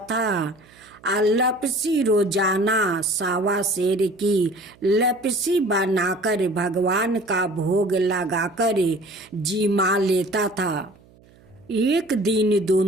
था। लपसी रोजाना सावा शेर की लपसी बनाकर भगवान का भोग लगाकर जिमा लेता था। एक दिन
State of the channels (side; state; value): right; noise; hum, 28 dB below the sound